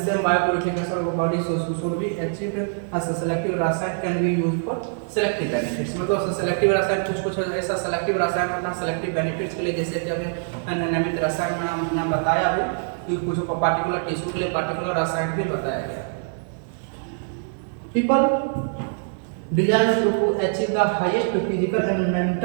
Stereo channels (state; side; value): silent; left; 63 dB below the other